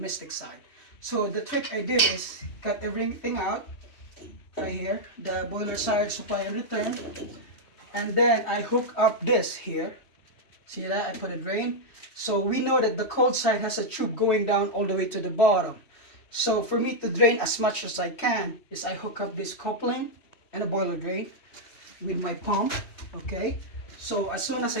side. So the trick I did is cut everything out right here, the boiler side supply and return, and then I hook up this here. See that? I put a drain. So we know that the cold side has a tube going down all the way to the bottom. So for me to drain as much as I can is I hook up this coupling and a boiler drain with my pump, okay? So as soon as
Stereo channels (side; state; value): right; late; 3.1 ms